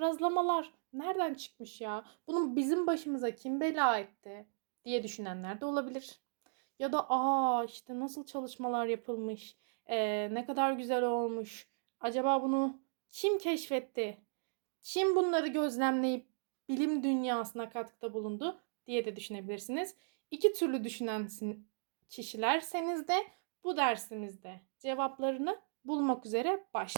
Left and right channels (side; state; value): left; silent; digital silence